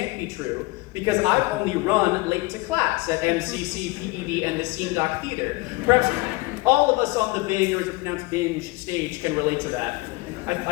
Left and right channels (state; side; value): quieter; right; 22.2 dB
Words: be true, because I've only run late to class at MCC, PED, and the Scene Doc Theater. Perhaps all of us on the Bing, or is it pronounced binge, stage can relate to that.